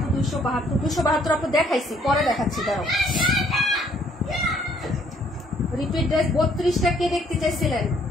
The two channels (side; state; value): both; normal; correlation 0.64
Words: 272 আপু দেখাইছি, পরে দেখাচ্ছি দাঁড়াও। রিপিট ড্রেস 32টা কে দেখতে চাইছিলেন?